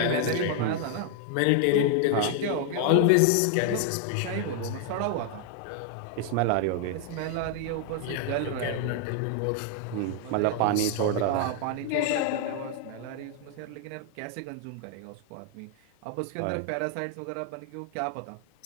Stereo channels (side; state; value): both; different; correlation 0.00